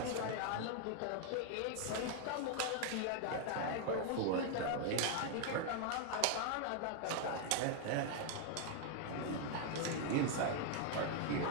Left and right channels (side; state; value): both; different; correlation 0.00